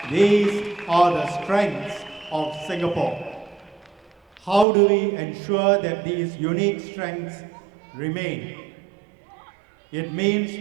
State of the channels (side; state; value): left; drops out; at 4.7 s